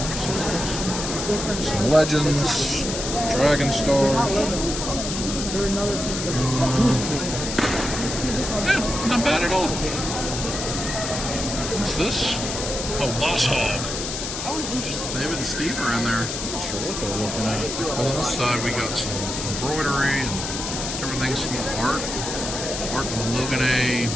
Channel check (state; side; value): noise; left; hiss, 5 dB below the sound